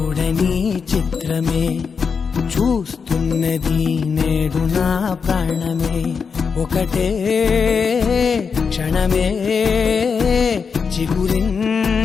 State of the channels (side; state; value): right; quieter; 5.7 dB